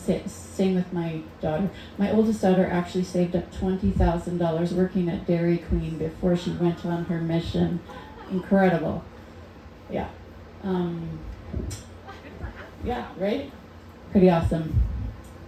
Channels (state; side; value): identical; both; correlation 1.00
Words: with my daughter. My oldest daughter actually saved up $20,000 working at Dairy Queen before she went on her mission. Incredible. Yeah. Yeah, right? Pretty awesome.